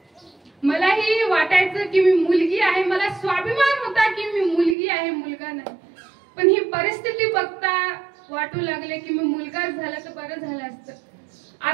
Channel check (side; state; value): left; drops out; at 4.8 s